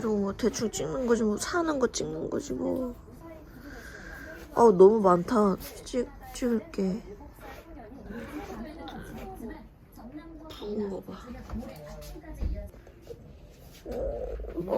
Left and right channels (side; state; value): both; identical; correlation 1.00